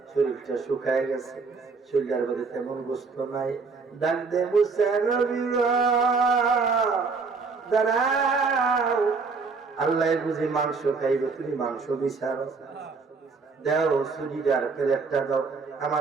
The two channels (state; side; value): quieter; left; 4.6 dB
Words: শরীরটা শুকায় গেছে, শরীরের মধ্যে তেমন গোস্ত নাই। ডাক দে মুসা নবী দাঁড়াও, আল্লাহ বুঝি মাংস খাইবে, তুমি মাংস বিচারো, দাও শরীর প্লেটটা দাও,